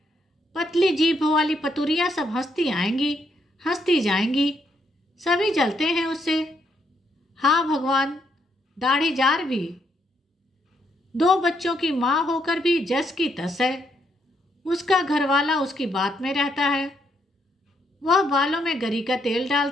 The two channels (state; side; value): normal; both; correlation 0.75